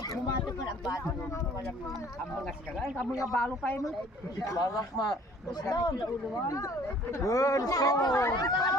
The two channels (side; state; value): both; normal; correlation 0.54